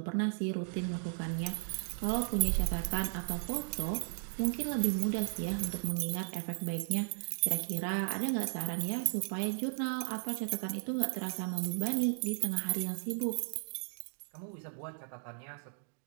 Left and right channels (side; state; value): left; silent; digital silence